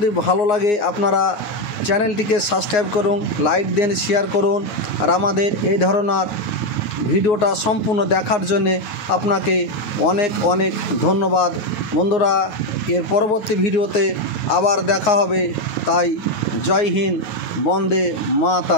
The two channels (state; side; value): late; right; 9.6 ms